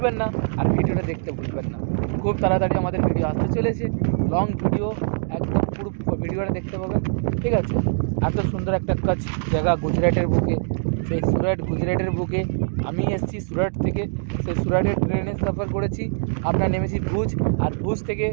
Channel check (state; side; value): silent; left; digital silence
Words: না, আর ভিডিওটা দেখতে ভুলবেন না। খুব তাড়াতাড়ি আমাদের ভিডিও আসতে চলেছে, লং ভিডিও, একদম পুরো ভিডিওটা দেখতে পাবেন, ঠিক আছে? এত সুন্দর একটা কাজ জায়গা গুজরাটের বুকে, সেই গুজরাটের বুকে আমি এসেছি সুরাট থেকে। সেই সুরাটের ট্রেনে সফর করেছি, আমরা নেমেছি ভুজ, আর ভুজ থেকে